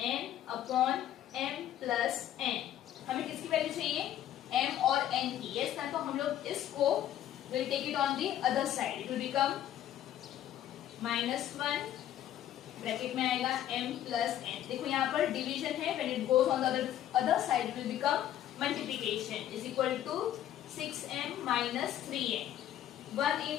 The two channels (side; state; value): right; quieter; 11.7 dB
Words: upon m plus n। हमें किसकी वैल्यू चाहिए? m और n की। यस ना, तो हम लोग इसको will take it on the other side. It will become -1 bracket में आएगा m प्लस n। देखो यहाँ पर डिवीजन है, when it goes on the other side it will become multiplication is equal to 6m minus 3n। 1